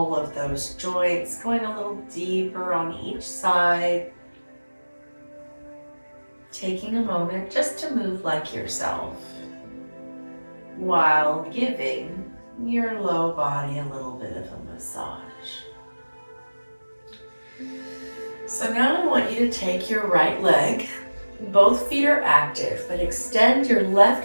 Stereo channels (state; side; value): inverted; both; correlation -1.00